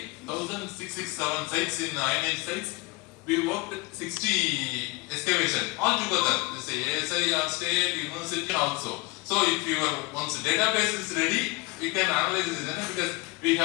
1,667 sites in Iron Age sites. We worked 60 excavation all together. This ASI, State, University also. So if your once database is ready, we can analyze this because we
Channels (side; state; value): right; quieter; 24.0 dB